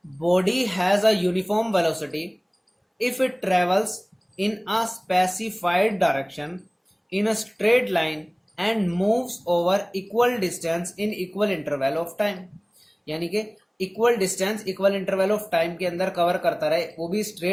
body has a uniform velocity if it travels in a specified direction in a straight line and moves over equal distance in equal interval of time। यानी कि equal distance equal interval of time के अंदर cover करता रहे, वो भी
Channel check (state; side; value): identical; both; correlation 1.00